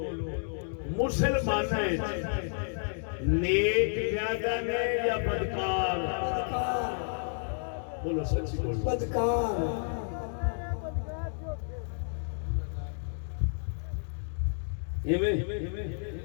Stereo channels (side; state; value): right; silent; digital silence